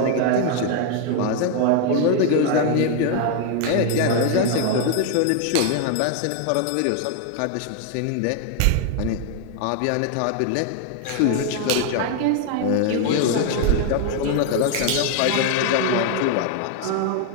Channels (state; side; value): different; both; correlation 0.00